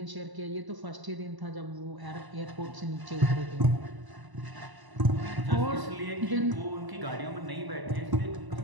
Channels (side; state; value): left; late; 1.0 ms